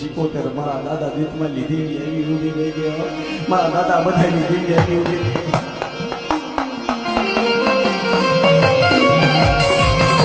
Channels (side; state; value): both; identical; correlation 1.00